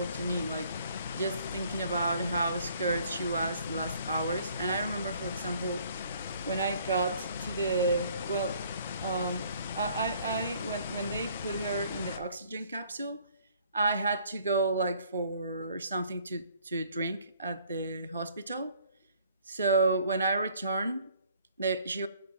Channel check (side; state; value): both; inverted; correlation -0.59